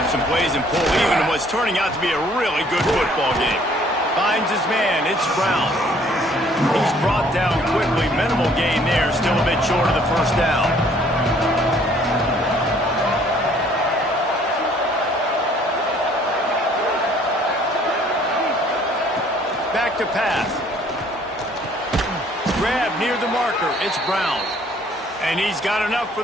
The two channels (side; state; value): both; normal; correlation 0.59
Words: up some plays and pull even in what's turning out to be a really good football game. Finds his man. It's Brown. He's brought down quickly. Minimal gain there. Still a bit short of the first down. Back to pass. Grab near the marker. It's Brown. And he's got enough for